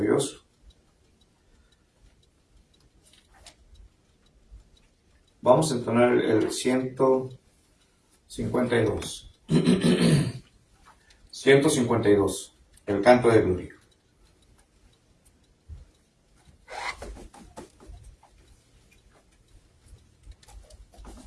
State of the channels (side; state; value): both; identical; correlation 1.00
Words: Vamos a entonar el 152. 152, el canto de gloria.